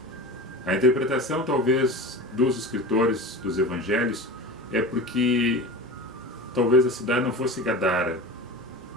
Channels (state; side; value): normal; both; correlation 0.31